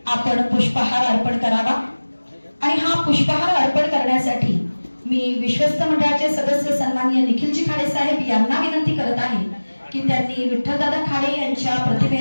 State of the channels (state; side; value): inverted; both; correlation -1.00